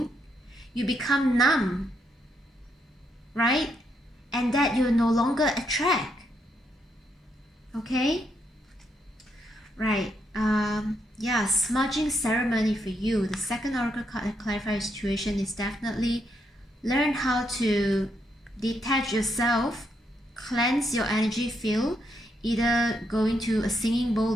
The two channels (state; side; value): normal; both; correlation 0.78